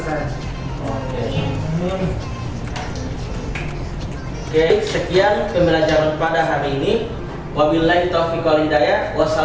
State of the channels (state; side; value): identical; both; correlation 1.00